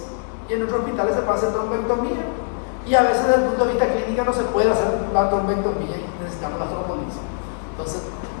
y en otros hospitales se puede hacer trombectomía. Y a veces, desde el punto de vista clínico, no se puede hacer la trombectomía y necesitamos la trombolisis. Entonces,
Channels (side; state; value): right; silent; digital silence